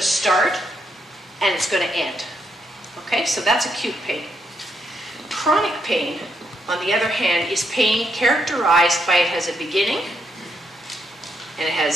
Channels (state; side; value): normal; both; correlation 0.78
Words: start and it's going to end. Okay, so that's acute pain. Chronic pain, on the other hand, is pain characterized by it has a beginning and it